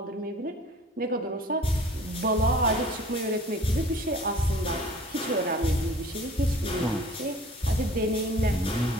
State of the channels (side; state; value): both; normal; correlation 0.48